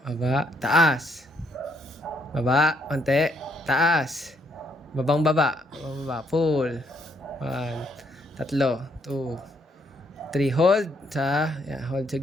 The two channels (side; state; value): both; normal; correlation 0.71